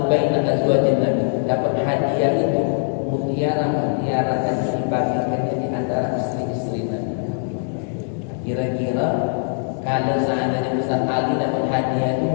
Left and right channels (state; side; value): silent; right; digital silence